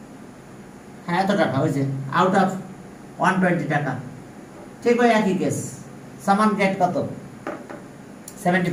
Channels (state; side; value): identical; both; correlation 1.00